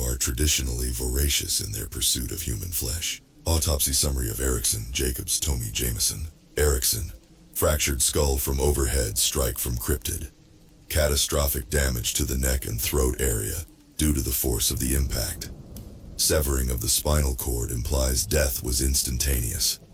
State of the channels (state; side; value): identical; both; correlation 1.00